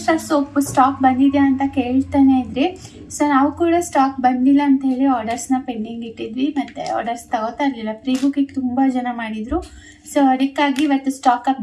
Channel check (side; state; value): both; identical; correlation 1.00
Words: ಸೋಪ್ ಸ್ಟಾಕ್ ಬಂದಿದೆ ಅಂತ ಕೇಳ್ತಾನೆ ಇದ್ರಿ. ಸೊ ನಾವು ಕೂಡ ಸ್ಟಾಕ್ ಬಂದಿಲ್ಲ ಅಂತ ಹೇಳಿ ಆರ್ಡರ್ಸ್ನ ಪೆಂಡಿಂಗ್ ಇಟ್ಟಿದ್ವಿ, ಮತ್ತು ಆರ್ಡರ್ಸ್ ತಗೋತಾ ಇರಲಿಲ್ಲ. ಪ್ರೀ ಬುಕ್ಕಿಗೆ ತುಂಬ ಜನ ಮಾಡಿದರು. ಸೊ ಅದಕ್ಕಾಗಿ ಇವತ್ತು ಸ್ಟಾಕ್